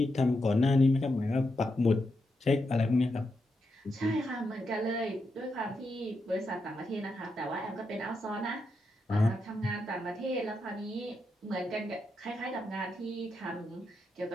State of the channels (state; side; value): normal; both; correlation 0.84